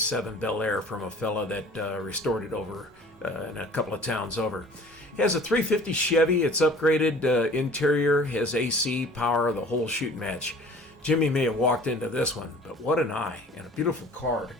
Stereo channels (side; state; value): both; normal; correlation 0.48